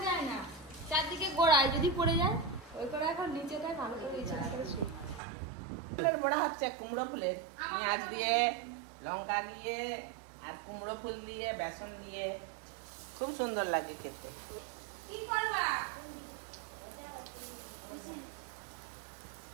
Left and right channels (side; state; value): left; drops out; at 5.2 s